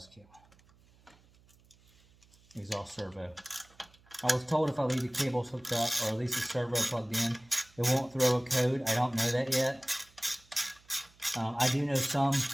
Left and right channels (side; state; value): right; noise; hum, 29 dB below the sound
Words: cable, exhaust servo. I was told if I leave the cables hooked up, or at least the servo plugged in, it won't throw a code. I don't know that yet. I do know some